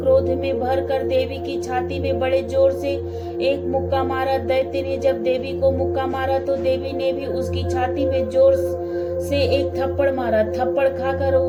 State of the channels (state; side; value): identical; both; correlation 1.00